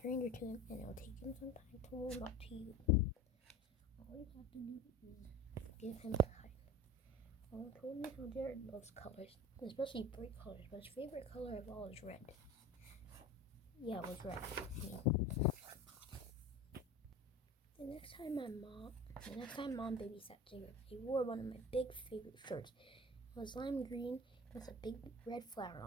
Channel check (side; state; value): both; normal; correlation 0.35